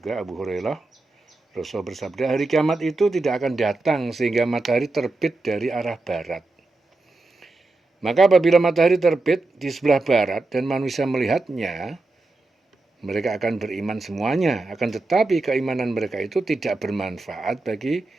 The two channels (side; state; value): left; quieter; 3.1 dB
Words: Abu Hurairah, Rasul bersabda, hari kiamat itu tidak akan datang sehingga matahari terbit dari arah barat. Maka apabila matahari terbit di sebelah barat dan manusia melihatnya, mereka akan beriman semuanya. Akan tetapi keimanan mereka itu tidak bermanfaat bagi